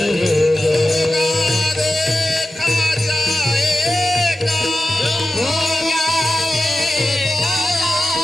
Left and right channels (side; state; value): both; normal; correlation 0.93